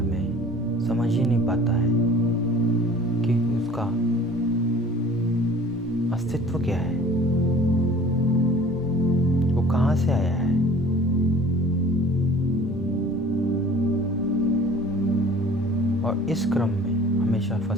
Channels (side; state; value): both; normal; correlation 0.47